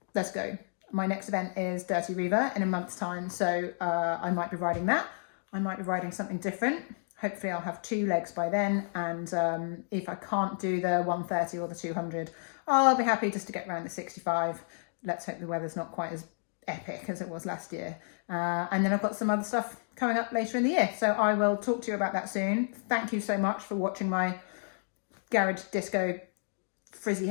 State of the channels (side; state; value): right; silent; digital silence